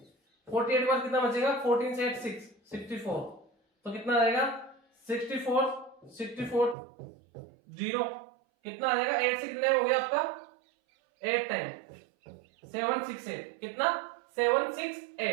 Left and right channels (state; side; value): drops out; left; at 6.8 s